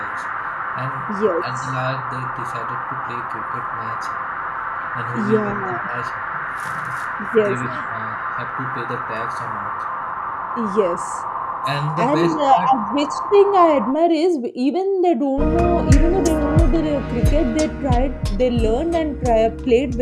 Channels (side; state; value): both; identical; correlation 1.00